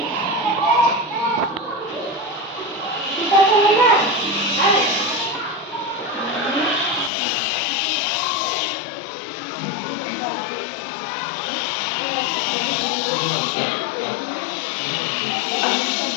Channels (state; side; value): drops out; right; at 7.1 s